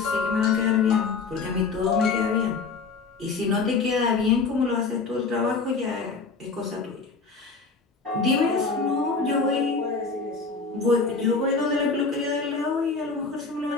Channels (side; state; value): right; quieter; 4.5 dB